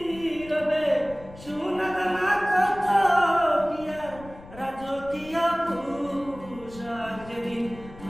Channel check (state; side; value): noise; left; rumble, 18 dB below the sound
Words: রবে, সোনা দানা কত কি আর রাজকীয় পোশাক। যেদিন